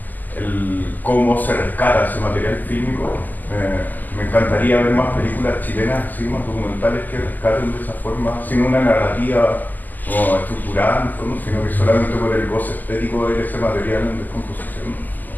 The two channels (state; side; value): late; right; 0.085 ms